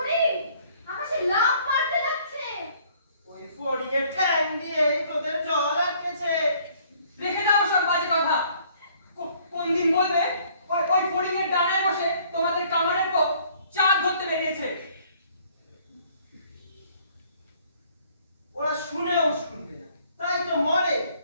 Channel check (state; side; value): inverted; both; correlation -0.60